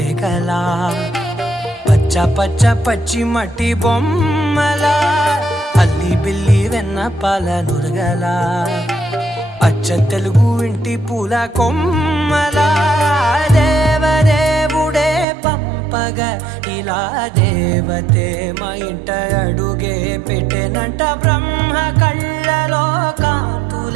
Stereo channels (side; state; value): left; drops out; at 15.2 s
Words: పచ్చ పచ్చ పచ్చి మట్టి బొమ్మలా అల్లి బిల్లి వెన్న పాల నురగలా అచ్చ తెలుగు ఇంటి పూల కొమ్మలా దేవదేవుడే పంపగా ఇలా దేవతే మా ఇంట అడుగే పెట్టెనంట బ్రహ్మ కళ్ళలో